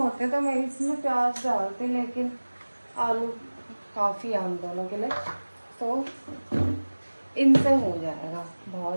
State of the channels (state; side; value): inverted; both; correlation -1.00